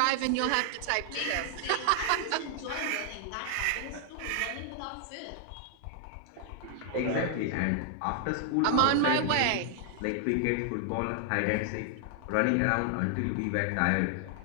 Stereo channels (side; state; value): both; different; correlation 0.00